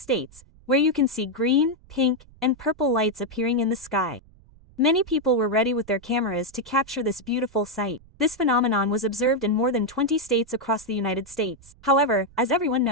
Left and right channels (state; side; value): noise; right; rumble, 25 dB below the sound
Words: where you can see green, pink, and purple lights appearing in the sky. Many people were ready with their cameras to capture this beautiful sight. This phenomenon was observed in more than 20 states across the United States. However, as everyone